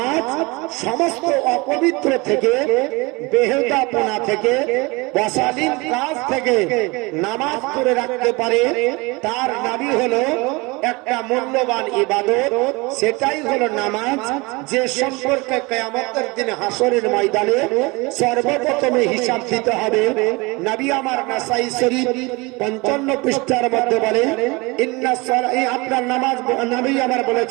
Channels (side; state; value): left; quieter; 25.3 dB